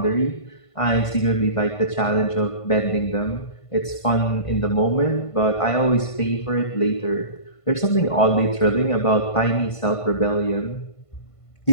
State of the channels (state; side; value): late; right; 1.5 ms